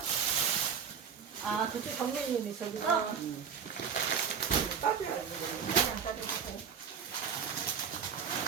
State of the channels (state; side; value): quieter; left; 7.2 dB